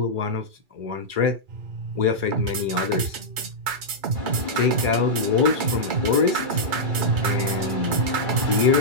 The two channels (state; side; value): late; left; 2.3 ms